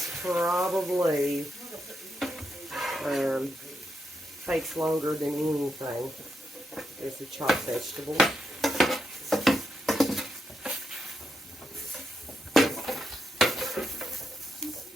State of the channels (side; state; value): both; normal; correlation 0.83